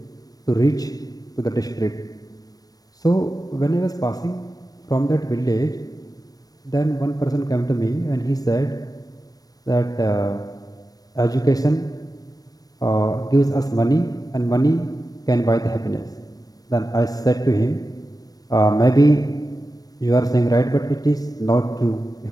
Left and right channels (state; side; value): late; right; 0.18 ms